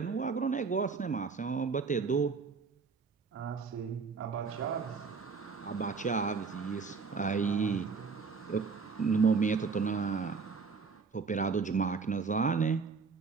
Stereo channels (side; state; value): left; quieter; 5.1 dB